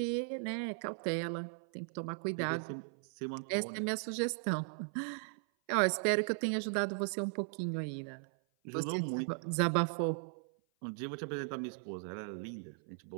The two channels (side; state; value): left; silent; 53 dB below the other